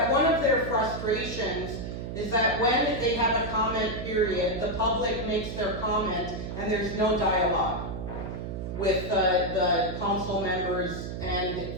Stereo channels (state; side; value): noise; right; hum, 6 dB below the sound